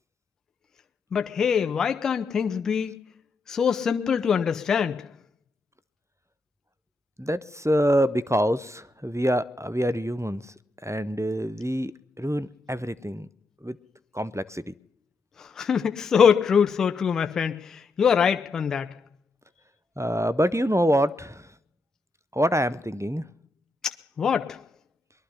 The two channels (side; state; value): right; quieter; 3.3 dB